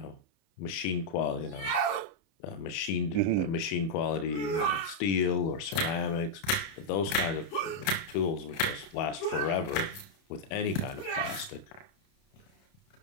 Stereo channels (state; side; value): late; right; 31 ms